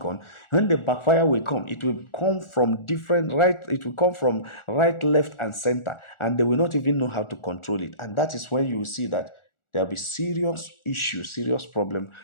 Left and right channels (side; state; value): right; late; 1.4 ms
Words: when the backfire will come, it will come from it will come from right, left, and center. And they will not even know how to control it. And that is when you will see that there'll be serious issues, serious problem